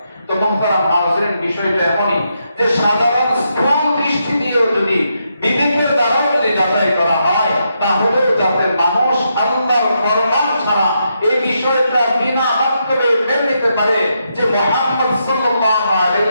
তো মুহতারাম হাজিরিন, বিষয়টা এমনই যে সাধারণ স্থূল দৃষ্টি দিয়েও যদি বিবেকের দ্বারা যদি যাচাই করা হয় তাহলে যাতে মানুষ আল্লাহর ফরমান ছাড়া এই বিষয়টা বিনা মাধ্যমে মেনে নিতে পারে যে মুহাম্মদ সাল্লাল্লাহু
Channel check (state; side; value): inverted; both; correlation -0.81